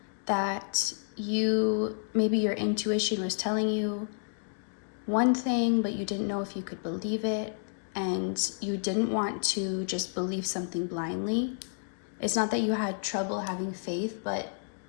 that maybe your intuition was telling you one thing, but you didn't know if you could believe it, and you didn't want to just believe something blindly. It's not that you had trouble having faith, but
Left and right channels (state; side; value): silent; right; digital silence